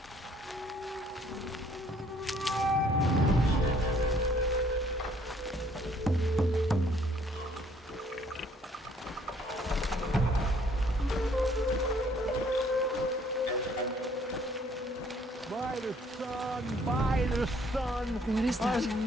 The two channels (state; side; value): normal; both; correlation 0.62